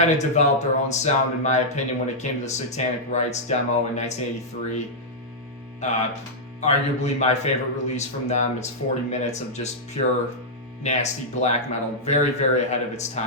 of developed their own sound in my opinion when it came to the Satanic Rites demo in 1983. Arguably my favorite release from them. It's 40 minutes of just pure nasty black metal, very, very ahead of its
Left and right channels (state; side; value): normal; both; correlation -0.07